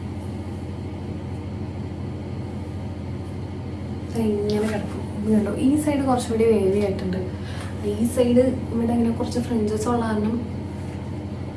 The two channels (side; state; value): both; identical; correlation 1.00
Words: ഇങ്ങനെ കിടക്കും. കണ്ടോ, ഈ സൈഡ് കുറച്ചുകൂടി വേവി ആയിട്ടുണ്ട്. ഈ സൈഡ് ഇവിടെ ഇങ്ങനെ കുറച്ച് ഫ്രിഞ്ചസ് ഉള്ള കാരണം